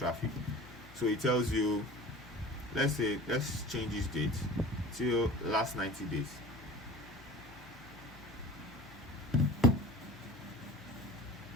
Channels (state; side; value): normal; both; correlation 0.40